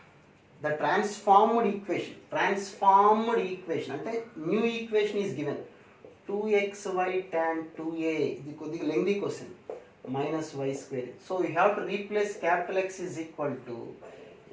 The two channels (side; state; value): both; identical; correlation 1.00